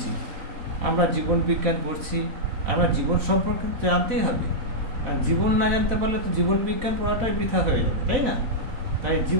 আমরা জীবন বিজ্ঞান পড়ছি, আমরা জীবন সম্পর্কে জানতেই হবে। আর জীবন না জানতে পারলে তো জীবন বিজ্ঞান পড়াটাই বৃথা হয়ে যাবে, তাই না? তাই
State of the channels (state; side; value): late; left; 4.0 ms